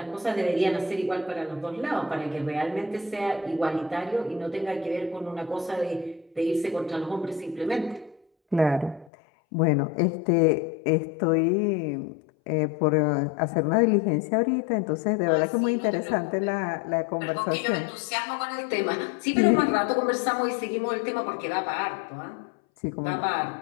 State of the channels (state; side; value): drops out; right; at 9.1 s